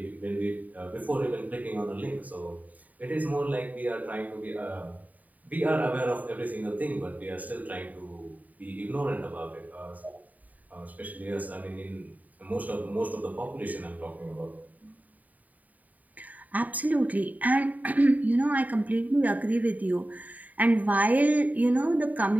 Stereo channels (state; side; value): late; left; 0.075 ms